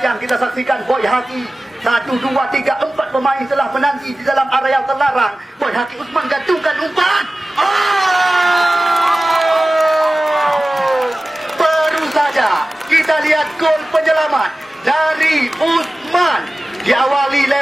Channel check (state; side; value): normal; both; correlation 0.96